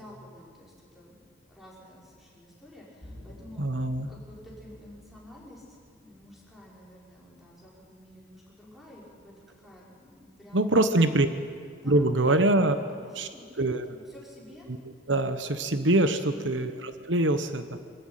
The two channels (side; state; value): both; normal; correlation 0.31